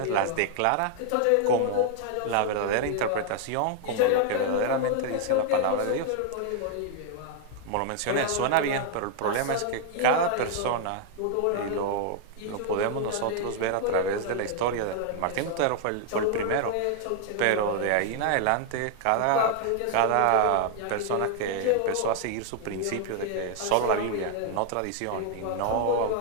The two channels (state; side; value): different; both; correlation 0.00